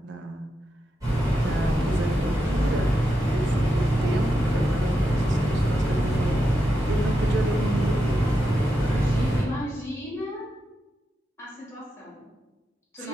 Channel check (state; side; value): normal; both; correlation 0.86